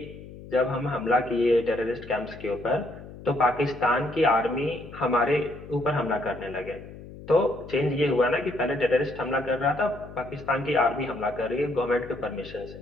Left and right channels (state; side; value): noise; left; hum, 15 dB below the sound